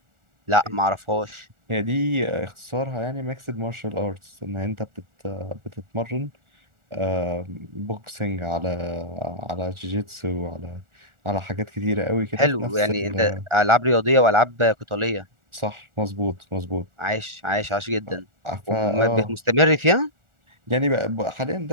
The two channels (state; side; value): late; left; 1.4 ms